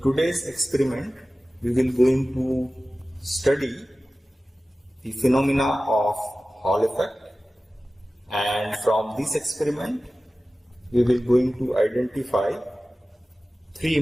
experiment, we will going to study the phenomena of Hall effect, and from this experiment, we will going to identify three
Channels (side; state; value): both; normal; correlation 0.96